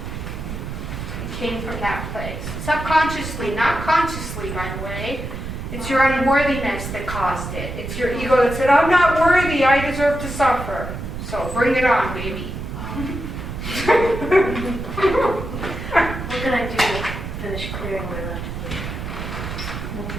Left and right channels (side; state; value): right; noise; rumble, 7 dB below the sound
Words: It came from that place. Subconsciously, not consciously, by the way. It's your unworthiness that caused it. It's your ego that said, I'm not worthy, I deserve to suffer. So bring it on, baby. What can I do to finish clearing my left foot? We'll